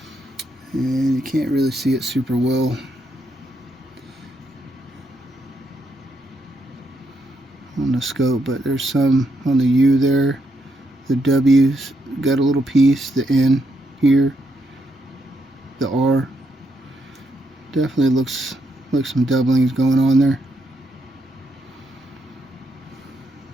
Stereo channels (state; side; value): normal; both; correlation 0.79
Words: And you can't really see it super well. On the scope, but there's some on the U there. The W's got a little piece, the N here, the R. Definitely looks like some doubling is going on there.